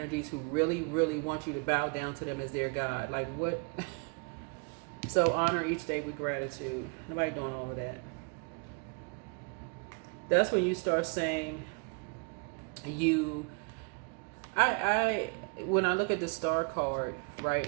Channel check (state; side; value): quieter; left; 35.7 dB